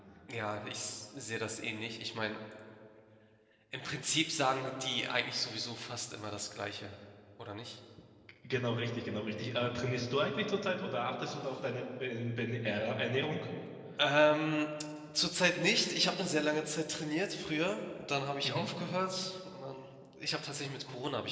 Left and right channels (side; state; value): both; identical; correlation 1.00